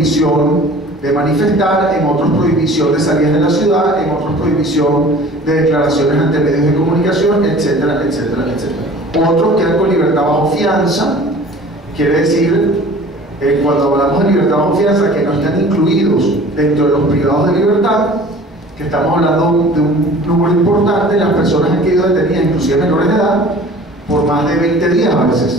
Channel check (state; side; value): normal; both; correlation 0.45